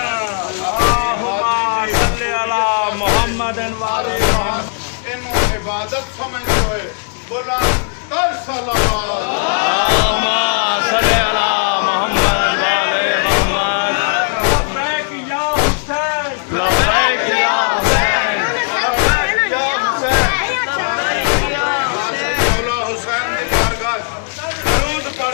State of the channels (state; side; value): silent; right; digital silence